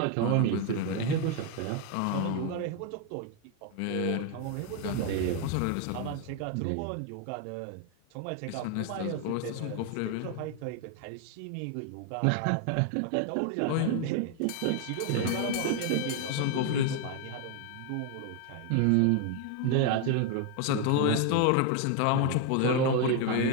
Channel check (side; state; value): both; different; correlation 0.01